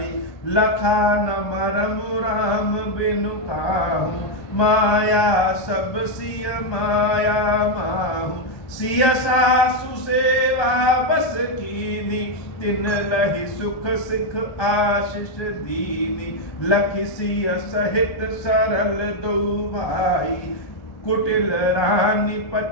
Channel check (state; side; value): late; right; 1.2 ms